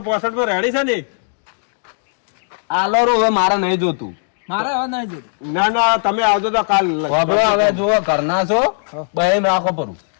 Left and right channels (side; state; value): right; silent; digital silence